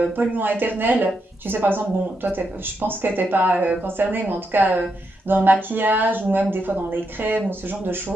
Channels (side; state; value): both; normal; correlation 0.82